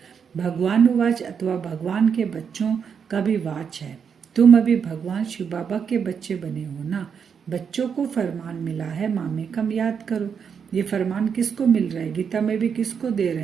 भगवान वाच अथवा भगवान के बच्चों का भी वाच है। तुम अभी भगवान शिव बाबा के बच्चे बने हो ना। बच्चों को फरमान मिला है, मामे कम याद करो। ये फरमान किसको मिल रहा है? गीता में भी किसको दे रहे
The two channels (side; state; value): left; quieter; 6.9 dB